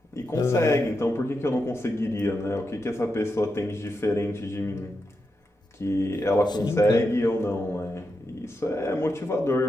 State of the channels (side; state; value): both; normal; correlation 0.87